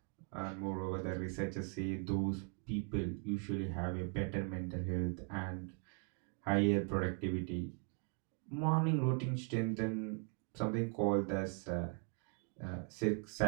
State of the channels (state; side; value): quieter; left; 38.0 dB